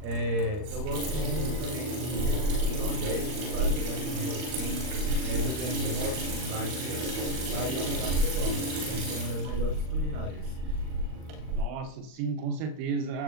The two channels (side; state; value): left; late; 39 ms